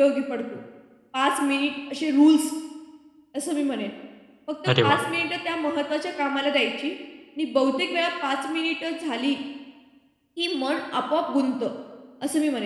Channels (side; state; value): both; identical; correlation 1.00